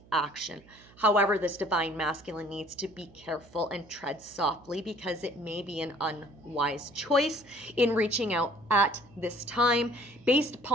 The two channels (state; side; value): noise; right; hum, 25 dB below the sound